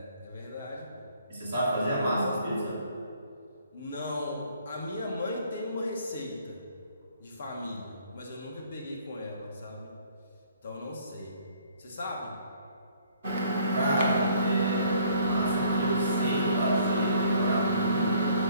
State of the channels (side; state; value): both; inverted; correlation -0.61